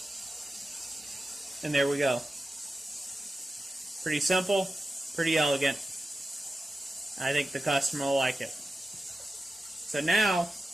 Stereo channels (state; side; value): normal; both; correlation 0.92